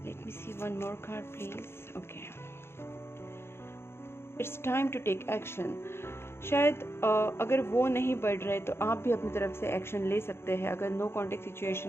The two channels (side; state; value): right; late; 0.12 ms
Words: Let me see one more card please. Okay, it's time to take action. शायद अगर वो नहीं बढ़ रहे तो आप भी अपनी तरफ से एक्शन ले सकते हैं। अगर नो कॉन्टेक्ट